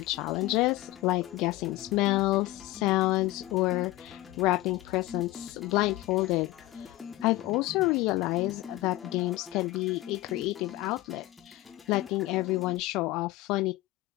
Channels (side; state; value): right; quieter; 18.2 dB